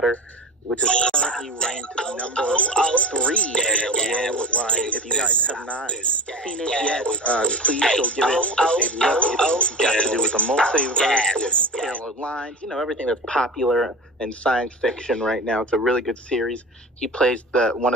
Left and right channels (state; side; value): normal; both; correlation 0.30